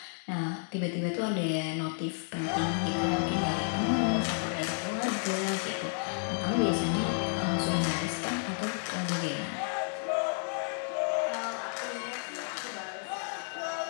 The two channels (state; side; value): silent; right; 57 dB below the other